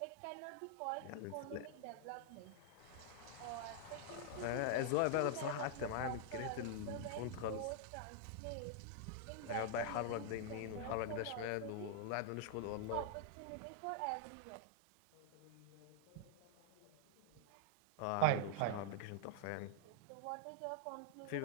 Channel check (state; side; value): different; both; correlation -0.01